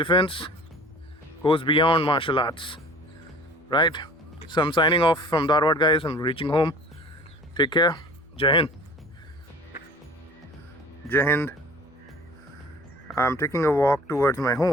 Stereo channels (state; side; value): normal; both; correlation 0.46